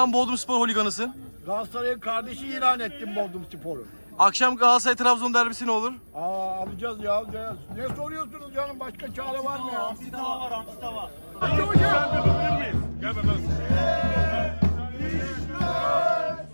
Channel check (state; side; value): inverted; both; correlation -1.00